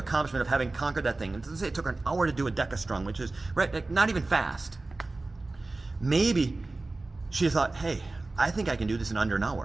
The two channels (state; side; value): quieter; left; 3.2 dB